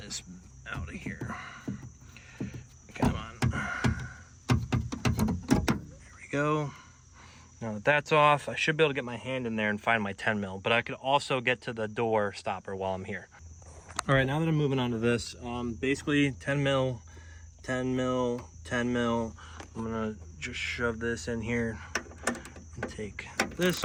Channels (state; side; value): identical; both; correlation 1.00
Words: out of here. Come on, there we go. Now that that's off, I should be able to get my hand in there and find my 10mm, but I could also get to the door stopper while I'm here. All right, now that I'm moving on to this, basically 10mm, 10mm, 10mm. I'm gonna just shove this in here and take this